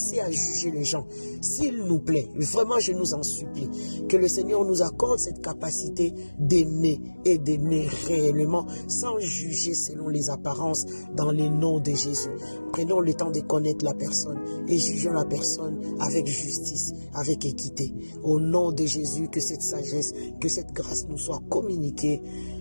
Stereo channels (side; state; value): both; inverted; correlation -1.00